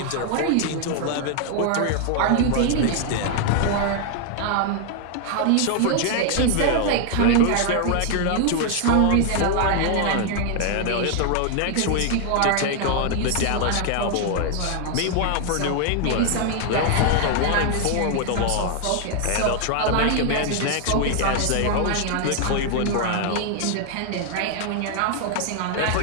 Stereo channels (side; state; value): both; different; correlation 0.00